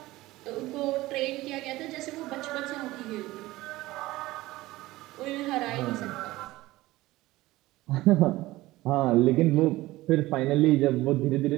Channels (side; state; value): left; quieter; 18.1 dB